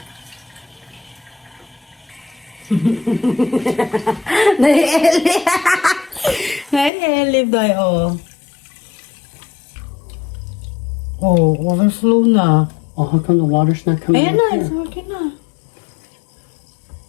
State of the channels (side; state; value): right; drops out; at 6.9 s